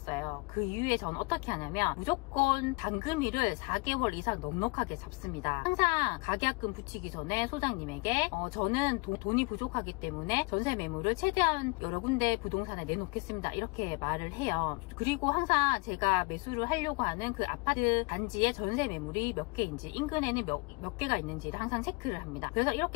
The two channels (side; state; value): right; quieter; 27.6 dB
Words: 그 이후에 저는 어떻게 하냐면 무조건 잔금일을 4개월 이상 넉넉하게 잡습니다. 항상 가계약금 붙이기 전에 소장님에게 저는 돈이 부족하기 때문에 전세 매물을 최대한 여러 군데 부동산에 내놓겠습니다, 이렇게 말을 해요. 그리고 항상 제가 매수를 하려고 하는 그 아파트 단지의 전세 매물이 몇 개인지, 인근에는 몇 개가 있는지를 항상 체크를 합니다. 그래서